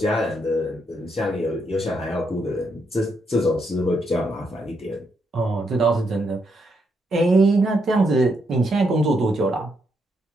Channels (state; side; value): normal; both; correlation 0.78